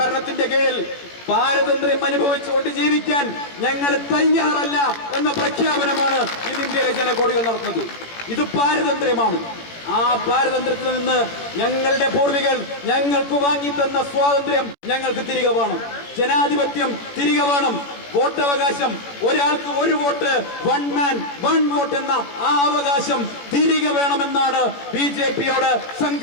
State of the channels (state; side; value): late; right; 18 ms